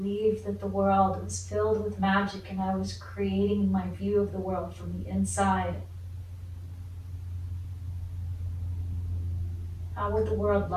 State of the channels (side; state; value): both; identical; correlation 1.00